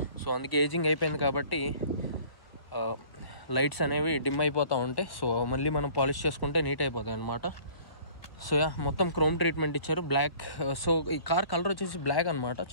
సో అందుకే ఏజింగ్ అయిపోయింది కాబట్టి లైట్స్ అనేవి డిమ్ అయిపోతూ ఉంటాయి. సో మళ్ళీ మనం పాలిష్ చేసుకుంటే నీట్ అయిపోతాయి అనమాట. సో మొత్తం క్రోమ్ ట్రీట్మెంట్ ఇచ్చారు, బ్లాక్. సో ఈ కార్ కలర్ వచ్చేసి బ్లాక్ అనమాట,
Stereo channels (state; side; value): late; right; 1.1 ms